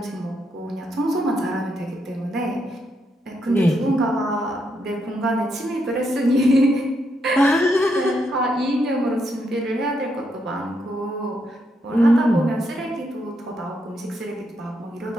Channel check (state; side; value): normal; both; correlation 0.79